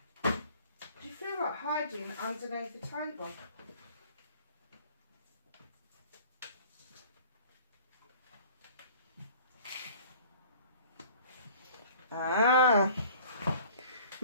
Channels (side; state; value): both; inverted; correlation -0.50